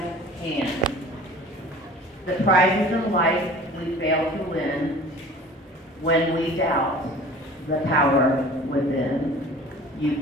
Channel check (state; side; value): normal; both; correlation 0.44